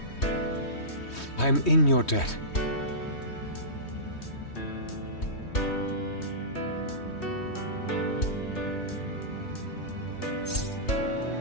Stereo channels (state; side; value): late; right; 3.2 ms